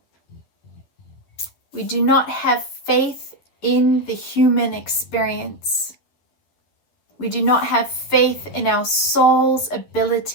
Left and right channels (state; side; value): late; right; 11 ms